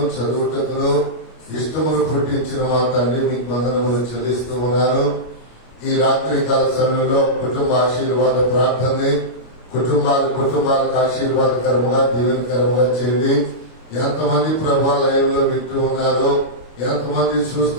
చదువుటకును ఇష్టమును పుట్టించిన మా తండ్రి మీకు వందనములు చెల్లిస్తూ ఉన్నాను. ఈ రాత్రి కాల సమయంలో కుటుంబ ఆశీర్వాద ప్రార్థనని కుటుంబాలకు ఆశీర్వాదకరముగా దీవెనకరముగా చేయండి. ఎంతమంది ప్రభా లైవ్ లో వింటూ ఉన్నారో, ఎంతమంది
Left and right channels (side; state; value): right; late; 25 ms